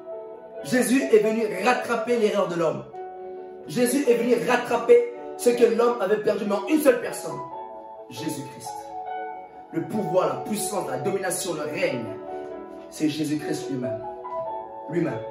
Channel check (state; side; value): identical; both; correlation 1.00